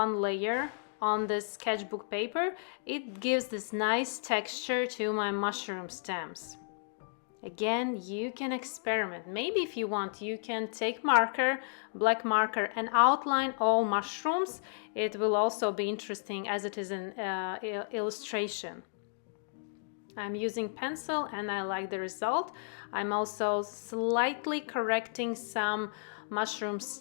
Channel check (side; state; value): right; silent; digital silence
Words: layer on this sketchbook paper, it gives this nice texture to my mushroom stems. Again, you can experiment. Maybe if you want, you can take marker, black marker, and outline all mushrooms. It will also be interesting as it is an illustration. I'm using pencil and I like the result. I'm also slightly correcting some mushroom